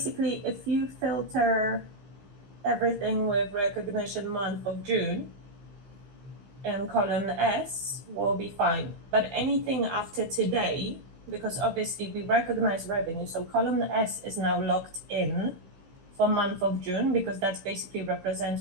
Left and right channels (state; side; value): late; left; 15 ms